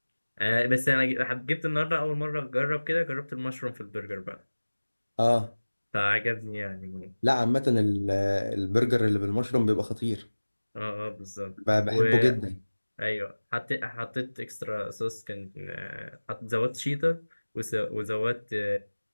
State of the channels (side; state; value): both; inverted; correlation -1.00